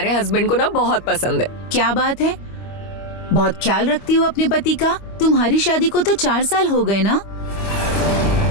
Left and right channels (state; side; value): late; right; 25 ms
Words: हस्बैंड को ना बहुत पसंद है। क्या बात है? बहुत ख्याल रखती हो अपने पति का। तुम्हारी शादी को तो 4 साल हो गए ना,